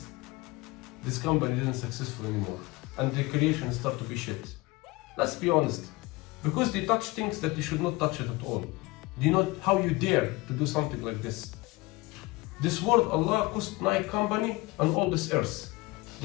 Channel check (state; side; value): quieter; right; 22.2 dB